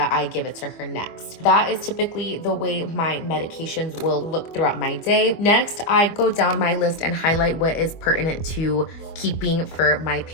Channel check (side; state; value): right; late; 25 ms